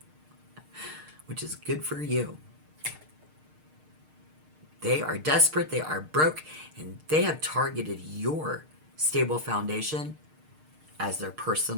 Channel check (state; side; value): late; left; 6.5 ms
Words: Which is good for you. They are desperate, they are broke, and they have targeted your stable foundation as their